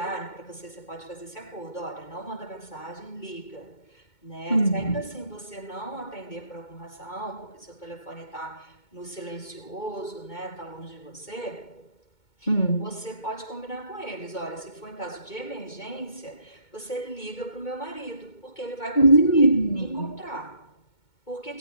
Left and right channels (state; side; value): late; right; 2.2 ms